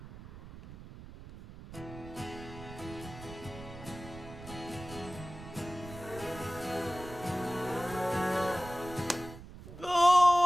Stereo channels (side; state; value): right; noise; rumble, 14 dB below the sound